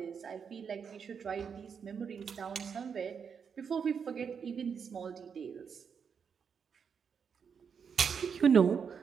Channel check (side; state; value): left; quieter; 6.6 dB